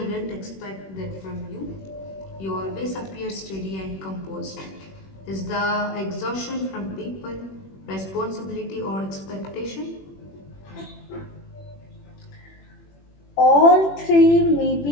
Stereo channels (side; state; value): right; late; 21 ms